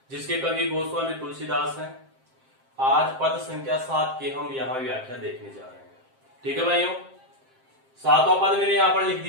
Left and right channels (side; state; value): left; late; 7.6 ms